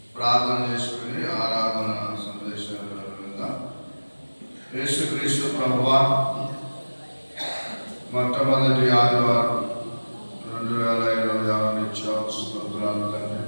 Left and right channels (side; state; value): both; inverted; correlation -1.00